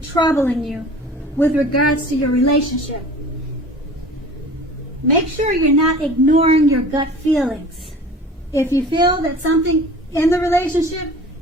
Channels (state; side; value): normal; both; correlation 0.43